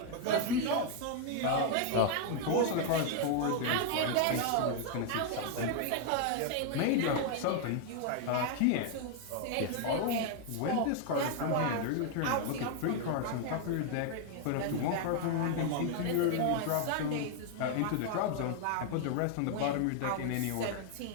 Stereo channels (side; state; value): both; different; correlation 0.00